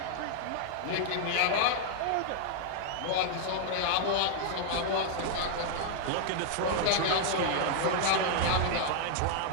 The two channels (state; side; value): different; both; correlation -0.01